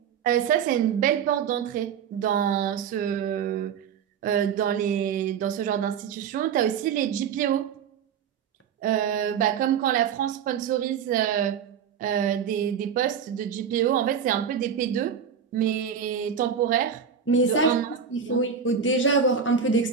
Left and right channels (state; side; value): quieter; left; 7.3 dB